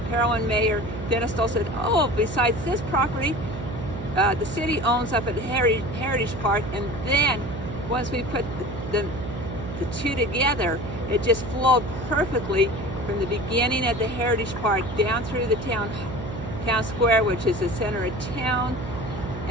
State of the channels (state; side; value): noise; right; hum, 8 dB below the sound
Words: Parowan Mayor Dennis Stoll said, oh, besides this property, the city owns up at Heritage Park, and then once we put the two together, it just flowed perfectly from the beginning at the Heritage Park down through the town square, which is the center of town,